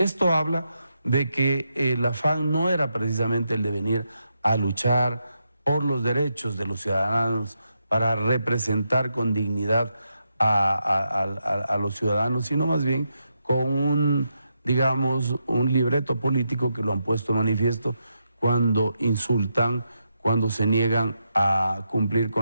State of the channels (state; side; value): inverted; both; correlation -0.83